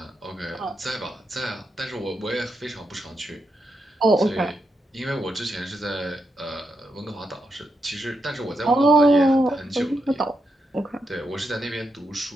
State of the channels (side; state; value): both; normal; correlation 0.84